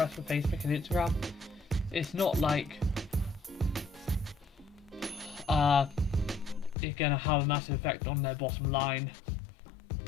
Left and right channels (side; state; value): right; drops out; at 6.8 s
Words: for Facebook and Instagram. It's not like it's going to have a massive effect on their bottom line,